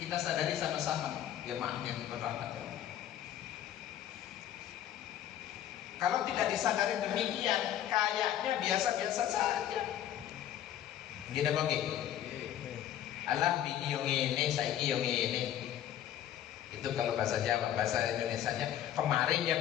sadari sama-sama ya yang berrahmat. Kalau tidak disadari demikian, kayaknya biasa-biasa saja. Gini bagi, alah bini yang ini, saiki yang ini. Itu kalau bahasa Jawa, bahasa Indonesianya, kemarin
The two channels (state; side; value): quieter; right; 11.3 dB